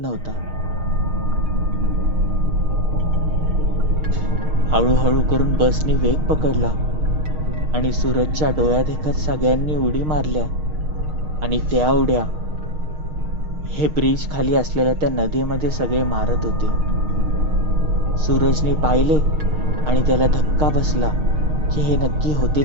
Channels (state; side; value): late; left; 6.5 ms